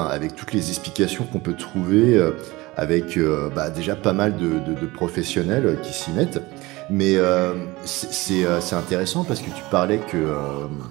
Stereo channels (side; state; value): left; quieter; 21.2 dB